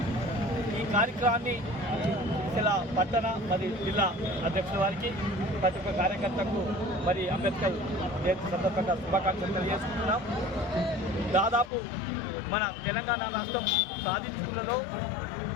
ఈ కార్యక్రమాన్ని ఇలా పట్టణ మరియు జిల్లా అధ్యక్షుల వారికి ప్రతి ఒక్క కార్యకర్తకు మరి అంబేద్కర్ జయంతి సందర్భంగా శుభాకాంక్షలు తెలియజేసుకుంటున్నాం. దాదాపు మన తెలంగాణ రాష్ట్రం సాధించుకున్నలో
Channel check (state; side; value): drops out; right; at 11.7 s